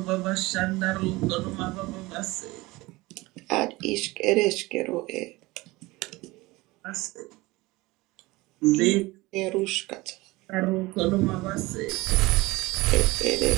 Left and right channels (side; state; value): left; quieter; 21.1 dB